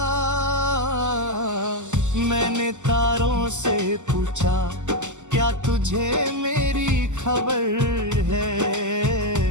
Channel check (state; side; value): late; left; 0.84 ms